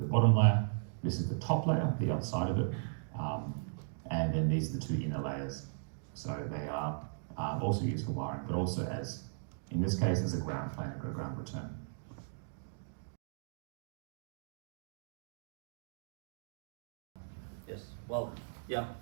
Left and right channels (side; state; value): left; silent; digital silence